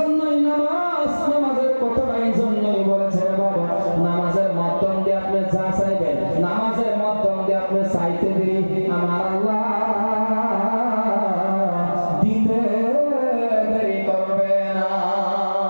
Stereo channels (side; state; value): both; inverted; correlation -1.00